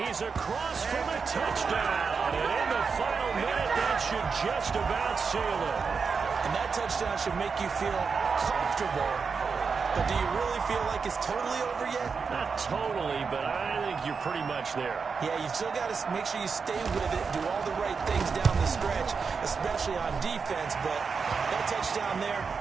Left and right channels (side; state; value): left; quieter; 5.4 dB